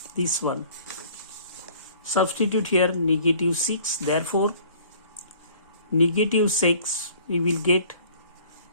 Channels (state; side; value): inverted; both; correlation -0.53